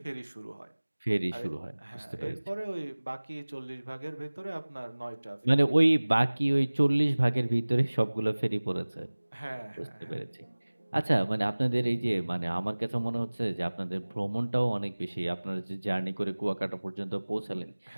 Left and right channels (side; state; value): both; inverted; correlation -1.00